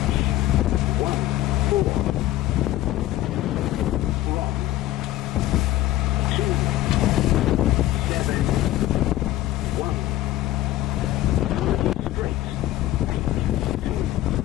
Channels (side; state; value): right; quieter; 14.9 dB